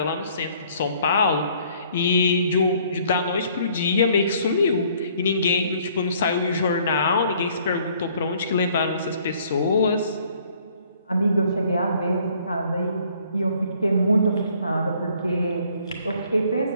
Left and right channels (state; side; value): inverted; both; correlation -0.60